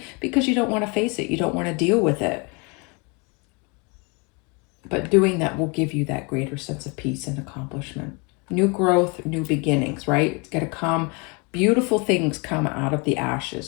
because you don't want to face it. You don't want to deal with it. But doing that will give you that greater sense of peace and accomplishment. New growth, new beginnings, right? It's going to come. Beautiful things come out of the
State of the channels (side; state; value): right; quieter; 30.8 dB